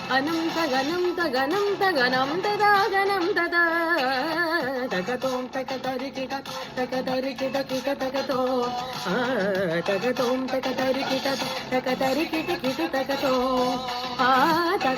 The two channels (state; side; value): identical; both; correlation 1.00